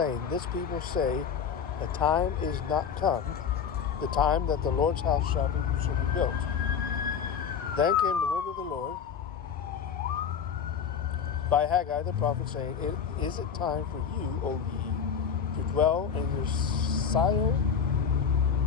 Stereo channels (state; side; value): quieter; right; 7.2 dB